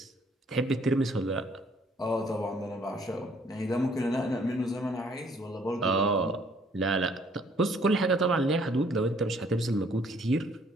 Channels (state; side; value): normal; both; correlation 0.62